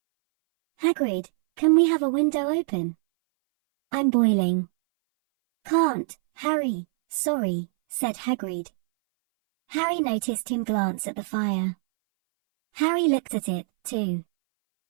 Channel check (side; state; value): left; silent; 60 dB below the other